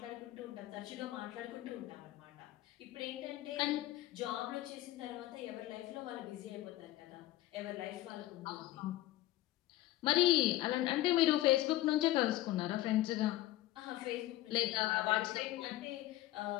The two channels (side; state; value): right; quieter; 15.7 dB